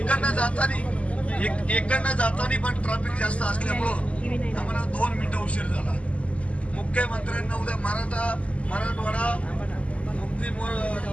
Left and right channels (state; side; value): late; right; 0.063 ms